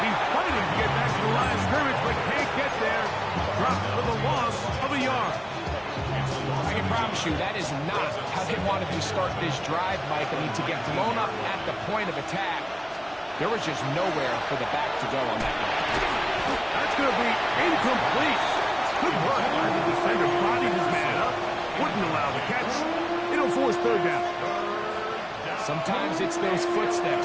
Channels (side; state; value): both; identical; correlation 1.00